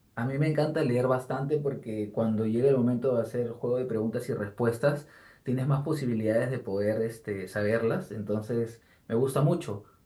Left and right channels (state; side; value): identical; both; correlation 1.00